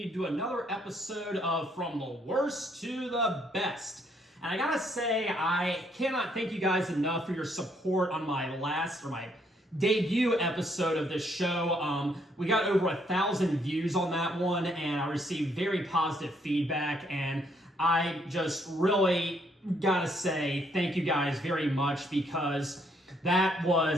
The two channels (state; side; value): normal; both; correlation 0.70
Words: to do another episode of From the Worst to the Best. And I gotta say, I cannot thank you guys enough for your support on my debut episode of this show. We got over 1,000 views on that one, and I received very positive feedback, and I just really gotta say thank you guys very much, because that